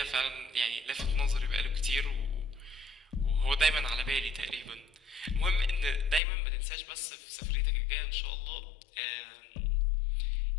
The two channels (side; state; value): right; drops out; at 6.2 s